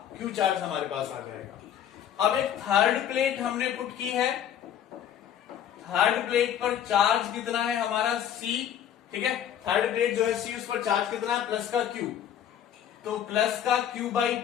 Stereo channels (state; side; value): quieter; right; 9.8 dB